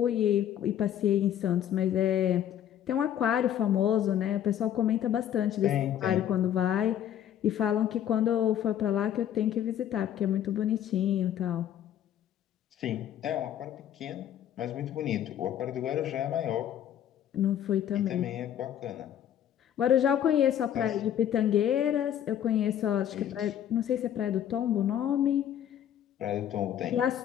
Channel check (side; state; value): right; quieter; 10.5 dB